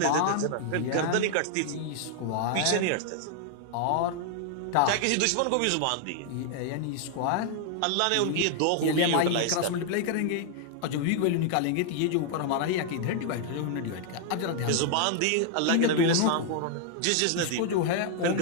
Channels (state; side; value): different; both; correlation 0.00